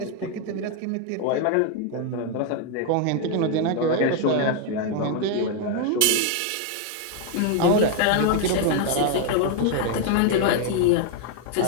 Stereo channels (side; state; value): both; different; correlation 0.01